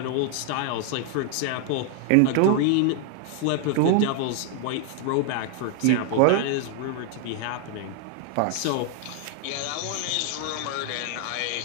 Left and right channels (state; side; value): different; both; correlation 0.00